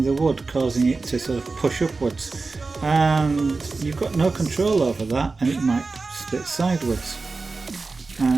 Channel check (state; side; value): quieter; left; 3.9 dB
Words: the wood, causing it to sort of push upwards, and you've got no control over that, and it might split sideways,